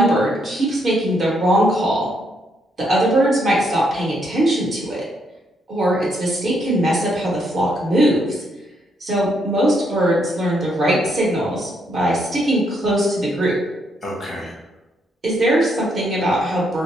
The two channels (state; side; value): normal; both; correlation 0.75